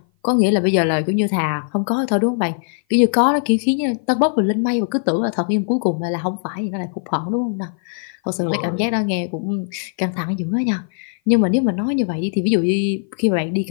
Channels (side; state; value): right; silent; 56 dB below the other